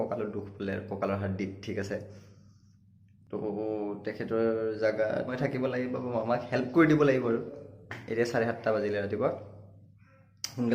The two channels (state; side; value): identical; both; correlation 1.00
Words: দুখ বোলে আৰু, কঁকালৰ হাড়দিত। ঠিক আছে, তো তেখেতৰ জেগাত মই থাকিব লাগিব, মামাক হেল্প কৰি দিব লাগিব আৰু। এতিয়া 7:30 বাজিলে ৰাতিপুৱা।